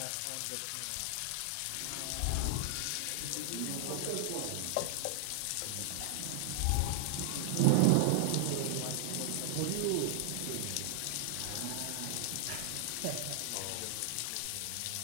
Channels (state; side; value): different; both; correlation -0.01